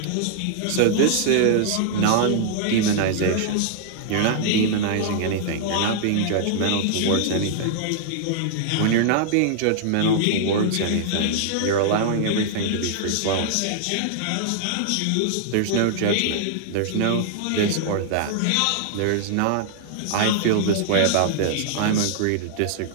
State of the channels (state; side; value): different; both; correlation -0.01